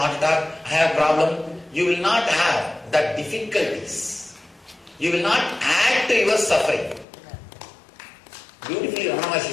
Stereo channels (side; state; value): right; drops out; at 7.1 s